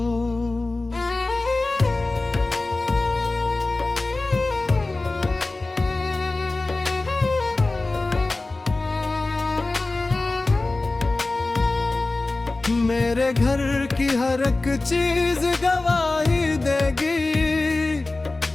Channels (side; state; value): right; quieter; 3.2 dB